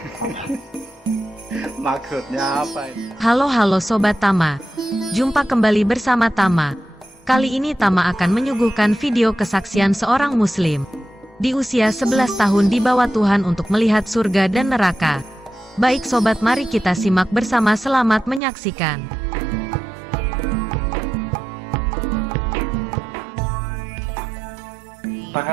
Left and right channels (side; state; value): left; drops out; at 18.4 s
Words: Maksudnya apa ini? Halo Sobat Tama. Jumpa kembali bersama Tama. Kali ini Tama akan menyuguhkan video kesaksian seorang muslim di usia 11 tahun dibawa Tuhan untuk melihat surga dan neraka. Baik sobat, mari kita simak bersama, selamat menyaksikan.